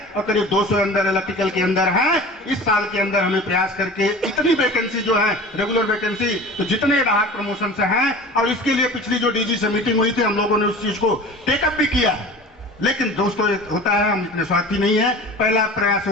और करीब 200 अंदर इलेक्ट्रिकल के अंदर है। इस साल के अंदर हमें प्रयास करके इतनी वैकेंसी जो है, रेगुलर वैकेंसी, तो जितने राहत प्रमोशन से हैं, और इसके लिए पिछली जो डीजी से मीटिंग हुई थी, हम लोगों ने उस चीज को टेकअप भी किया है। लेकिन दोस्तों, होता है, हम इतने स्वार्थी नहीं है। पहला प्रयास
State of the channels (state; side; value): normal; both; correlation 0.38